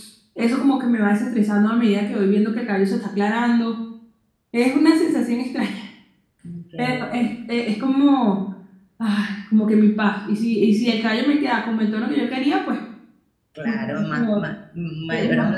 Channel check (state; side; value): identical; both; correlation 1.00